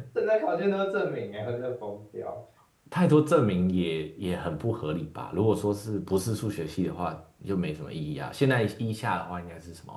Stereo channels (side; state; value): both; identical; correlation 1.00